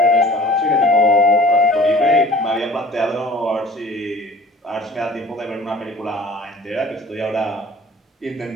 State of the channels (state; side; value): normal; both; correlation 0.47